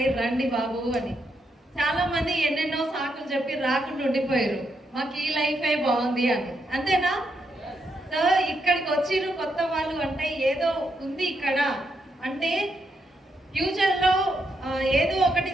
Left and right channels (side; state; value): both; normal; correlation 0.80